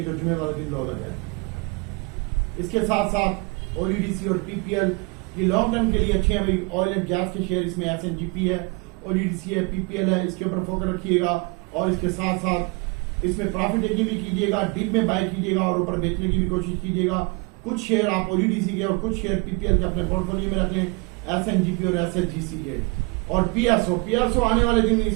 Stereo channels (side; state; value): left; quieter; 28.4 dB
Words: जो जुमे वाले दिन लो लगा है। इसके साथ साथ ODDC और PPL ये लॉन्ग टर्म के लिए अच्छे हैं भाई। ऑयल एंड गैस के शेयर इसमें SNGP है, ODDC है, PPL है, इसके ऊपर फोकस रखिएगा। और इसके साथ साथ इसमें प्रॉफिट टेकिंग भी कीजिएगा, डीप में बाय कीजिएगा और ऊपर बेचने की भी कोशिश कीजिएगा। कुछ शेयर आप ODDC के और कुछ शेयर PPL के अपने पोर्टफोलियो में रख लें, SNGP और SHGC के। और PSO आने वाले दिन